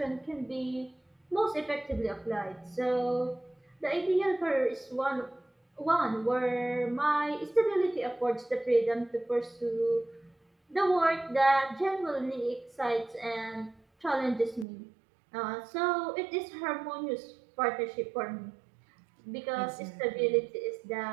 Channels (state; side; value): drops out; left; at 14.7 s